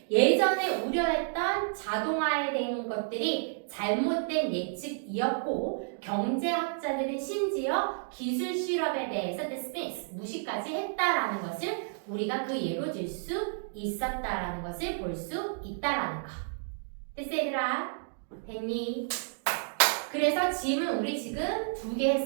예전에 우려했던 자동화에 대한 것들이 잘못된 예측이었고 경제학자들은 심지어 기술 실업에 대해서 dismiss, 무시까지 했다라는 것을 우리가 그 예로 들 수 있었다라는 것을 볼 수 있다라는 거. 됐어 얘들아? 됐니? 그래서 짐은 우리 지금 2개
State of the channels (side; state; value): left; silent; digital silence